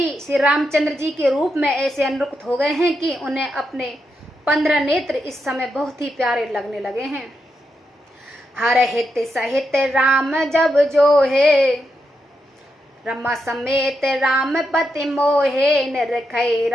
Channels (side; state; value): both; normal; correlation 0.84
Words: श्री रामचंद्र जी के रूप में ऐसे अनुरक्त हो गए हैं कि उन्हें अपने 15 नेत्र इस समय बहुत ही प्यारे लगने लगे हैं। हर हित सहित राम जब जो है, रमा समेत राम पति मोहे। निरखै